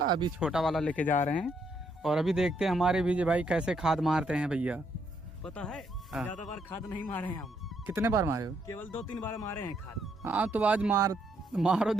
अभी छोटा वाला लेके जा रहे हैं। और अभी देखते हैं हमारे विजय भाई कैसे खाद मारते हैं भैया। पता है, हाँ। ज्यादा बार खाद नहीं मारे हैं हम। कितने बार मारे हो? केवल 2-3 बार मारे हैं खाद। हाँ, तो आज मारो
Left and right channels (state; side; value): normal; both; correlation 0.74